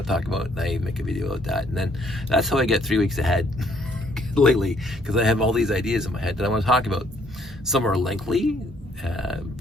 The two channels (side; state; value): both; normal; correlation 0.66